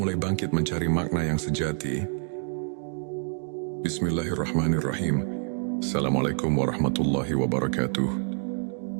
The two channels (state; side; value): silent; left; 60 dB below the other